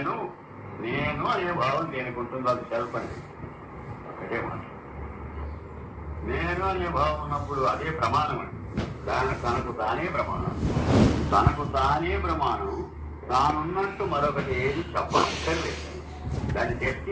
నేను అనే భావం దేనికి ఉంటుందో అది సెల్ఫ్ అనేది ఒకటే మాట. నేను అనే భావం ఉన్నప్పుడు అదే ప్రమాణం అండి. తనకు తానే ప్రమాణం, తనకు తానే ప్రమాణం. తానున్నట్టు మరొకటి ఏది చెప్పక్కర్లేదు, దాన్ని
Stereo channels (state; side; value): identical; both; correlation 1.00